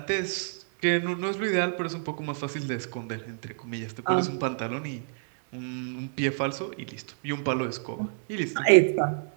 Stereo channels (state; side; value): silent; left; digital silence